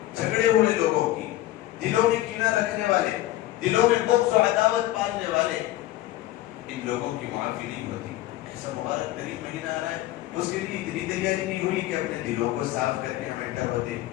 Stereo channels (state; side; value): quieter; right; 15.4 dB